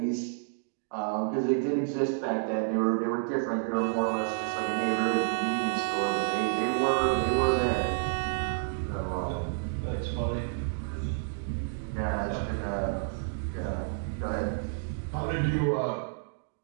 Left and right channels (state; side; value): silent; left; digital silence